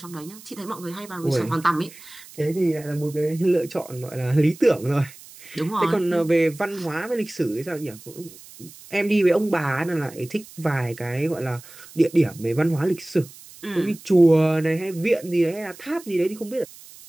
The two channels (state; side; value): noise; right; hiss, 20 dB below the sound